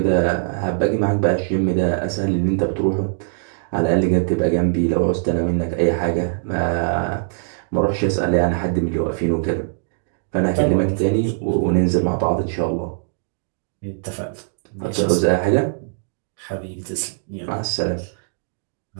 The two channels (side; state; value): left; silent; digital silence